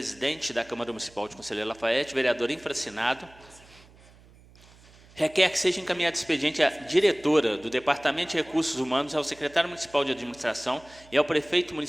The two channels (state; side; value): noise; right; hum, 25 dB below the sound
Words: da Câmara Municipal de Conselheiro Lafayette, vereador infracinado, requer que seja encaminhado expediente à diretora do Departamento de Recursos Humanos, ao secretário municipal de administração e ao prefeito